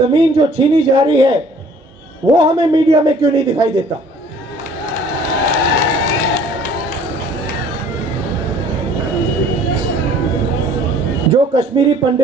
जो छीनी जा रही है, वो हमें मीडिया में क्यों नहीं दिखाई देता? जो कश्मीरी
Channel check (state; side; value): normal; both; correlation 0.54